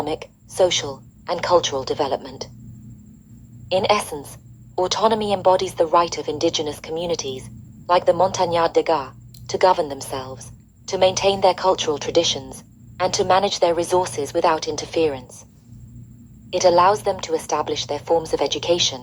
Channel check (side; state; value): both; identical; correlation 1.00